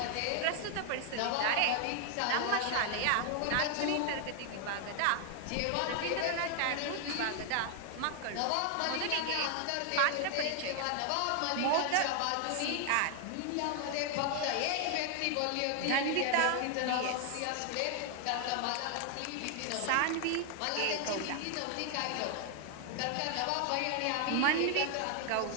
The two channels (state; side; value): different; both; correlation 0.00